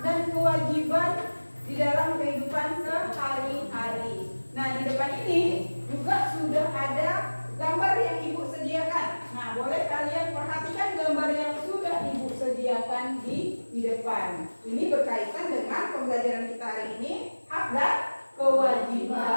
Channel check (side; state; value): both; inverted; correlation -1.00